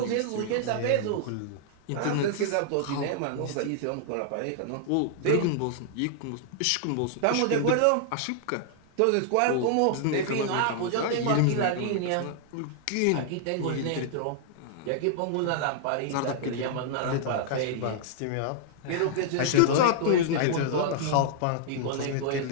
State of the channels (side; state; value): both; different; correlation -0.01